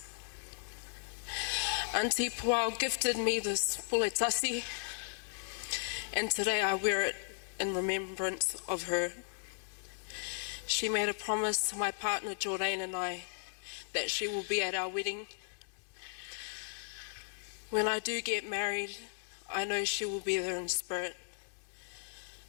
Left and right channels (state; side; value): silent; right; digital silence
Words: Auntie Puao gifted me this puletasi, and today I wear it in remembrance of her. She made a promise to my partner Jordan and I that she will be at our wedding. When I do get married, I know she will be there in spirit.